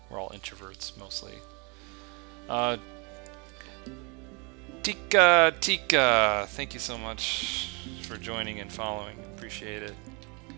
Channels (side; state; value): left; quieter; 31.3 dB